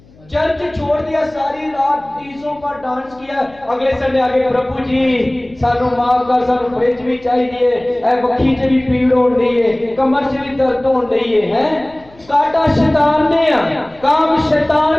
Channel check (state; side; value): noise; left; hum, 27 dB below the sound